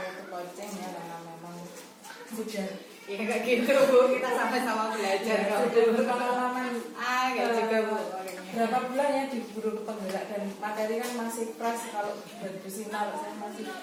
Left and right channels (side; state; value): both; identical; correlation 1.00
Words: itu coaching ya, karena memang sudah ya kayak gitu Bu, kita sama-sama belajar ya, sudah berpengalaman kayak juga Bu. Berapa bulan ya di guru penggerak, dan materi kan masih fresh. Kalau buat Sinar saya masih